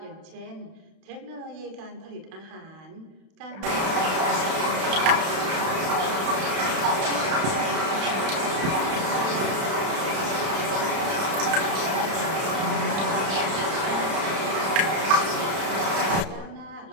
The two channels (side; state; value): left; late; 31 ms